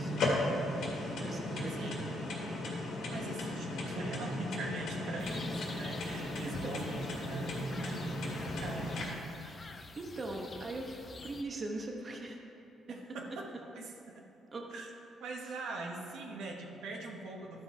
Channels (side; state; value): both; normal; correlation 0.74